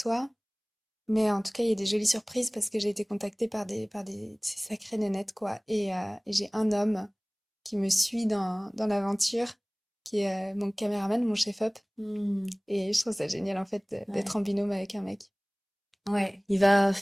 Mais en tout cas, il y a des jolies surprises parce que j'ai été contactée par des ces sacrées nénettes, quoi. Et j'ai un homme qui me suit dans l'aventure, qui est mon caméraman, mon chef-op. Mm. Et je trouve ça génial, en fait, d'être Ouais. en binôme avec un mec. Ouais. Il va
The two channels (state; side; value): identical; both; correlation 1.00